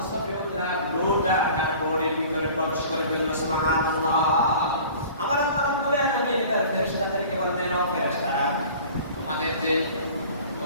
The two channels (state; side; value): inverted; both; correlation -0.45